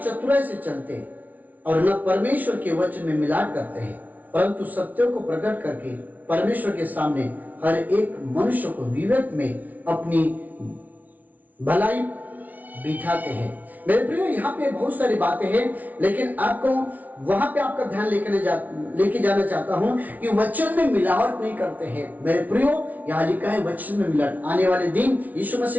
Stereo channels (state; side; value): late; left; 0.076 ms